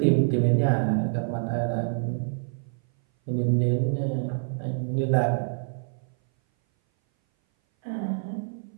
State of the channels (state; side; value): silent; left; 58 dB below the other